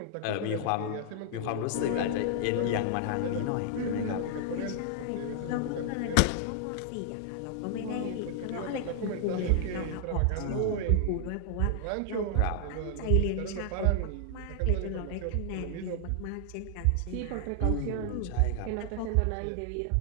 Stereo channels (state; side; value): different; both; correlation 0.00